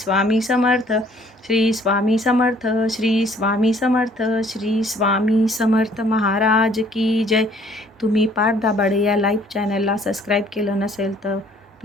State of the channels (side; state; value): both; normal; correlation 0.59